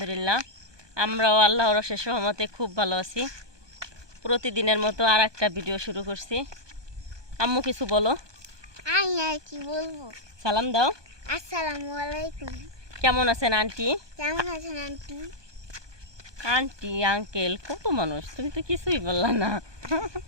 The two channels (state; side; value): late; left; 1.2 ms